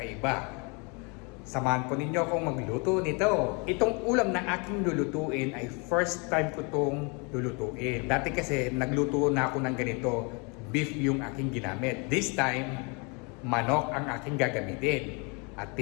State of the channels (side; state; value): right; quieter; 32.3 dB